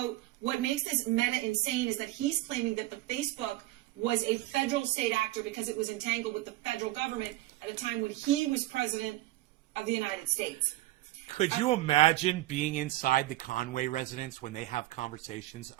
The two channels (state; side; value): quieter; left; 17.2 dB